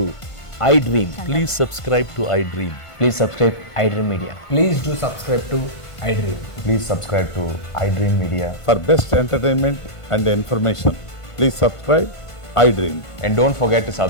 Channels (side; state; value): right; late; 1.5 ms